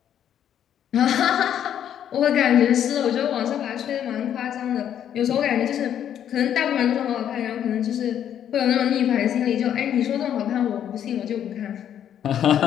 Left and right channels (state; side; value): quieter; right; 9.8 dB